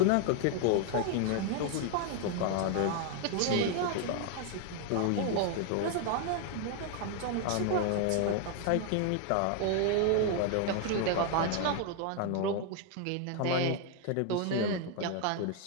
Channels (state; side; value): different; both; correlation 0.00